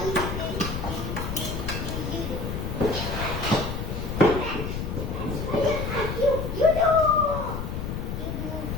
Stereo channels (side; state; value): left; noise; rumble, 4 dB below the sound